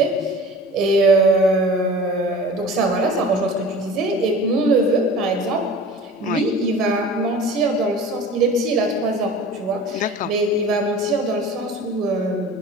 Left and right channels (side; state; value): both; normal; correlation 0.41